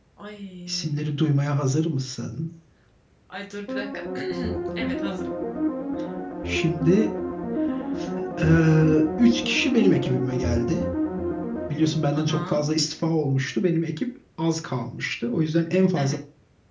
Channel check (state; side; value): identical; both; correlation 1.00